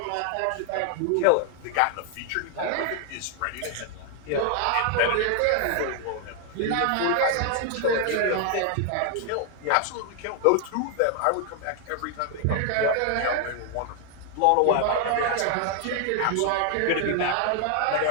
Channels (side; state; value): both; different; correlation 0.00